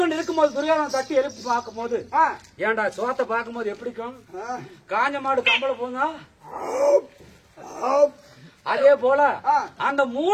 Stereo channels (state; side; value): identical; both; correlation 1.00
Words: இருக்கும்போது துரியோதனன் தட்டி எழுப்பி பார்க்கும் போது, ஏன்டா சோத்தை பார்க்கும் போது எப்படிக்கும்? காஞ்ச மாடு கம்பளை போங்க. அதே போல அந்த